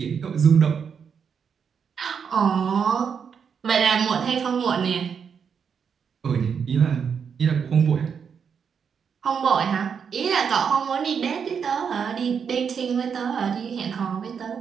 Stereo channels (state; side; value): quieter; left; 6.8 dB